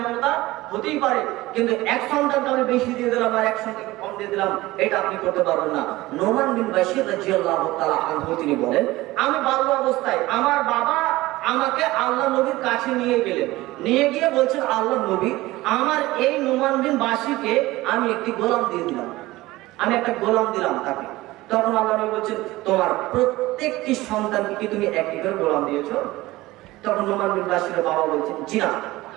মমতা হতেই পারে, কিন্তু এক সন্তানকে আমি বেশি দিয়ে দিলাম আর এক সন্তানকে কম দিয়ে দিলাম, এটা আপনি করতে পারবেন না। নোমান বিন বাশির রাদিয়াল্লাহু তাআলা আনহু তিনি বলেন, আমি বাল্য অবস্থায় আমার বাবা আমাকে আল্লাহ নবীর কাছে নিয়ে গেলেন, নিয়ে গিয়ে বলছেন আল্লাহ নবী আমার এই নোমান বিন বাশিরকে আমি একটি গোলাম দিয়ে দিলাম, আমি একটা গোলাম দিলাম তাকে। তখন আল্লাহ নবী বলছেন তোমার প্রত্যেকটি সন্তানকে কি তুমি একটি করে গোলাম দিয়েছো? তখন নোমান বিন বাশিরের বাবা বলছেন জি না,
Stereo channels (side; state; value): left; quieter; 18.6 dB